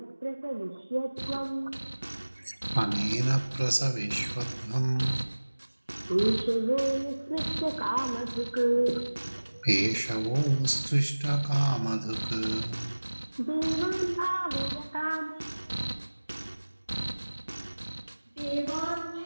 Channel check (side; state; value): both; inverted; correlation -1.00